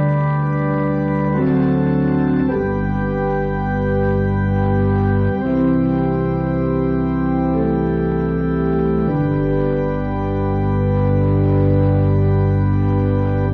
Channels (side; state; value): both; identical; correlation 1.00